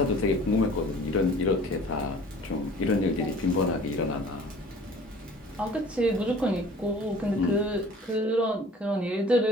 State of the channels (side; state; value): both; normal; correlation 0.48